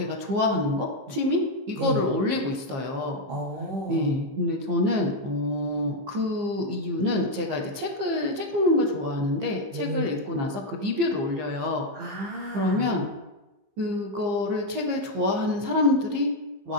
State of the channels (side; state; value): left; late; 15 ms